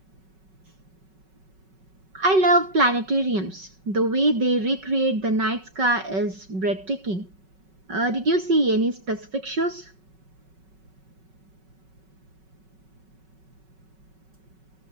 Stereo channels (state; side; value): late; left; 5.3 ms